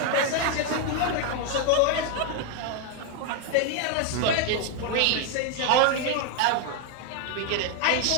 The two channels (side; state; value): both; different; correlation 0.01